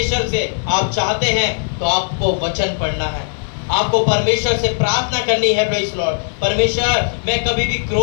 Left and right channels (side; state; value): right; silent; digital silence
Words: से आप चाहते हैं तो आपको वचन पढ़ना है, आपको परमेश्वर से प्रार्थना करनी है प्रेज़ द लॉर्ड। परमेश्वर, मैं कभी भी